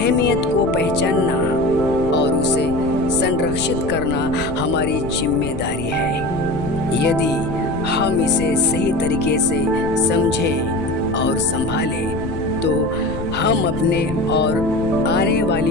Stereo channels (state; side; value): noise; left; rumble, 9 dB below the sound